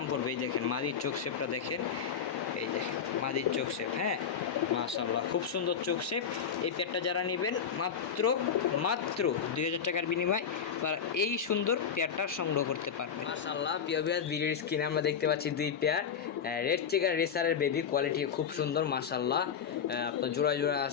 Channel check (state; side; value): quieter; right; 7.2 dB